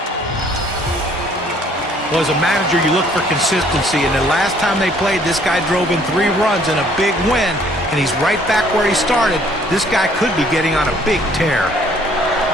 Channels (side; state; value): both; normal; correlation 0.61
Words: Well, as a manager, you look for consistency, and the last time they played, this guy drove in 3 runs and a big win, and he's right back where he started. This guy could be getting on a big tear.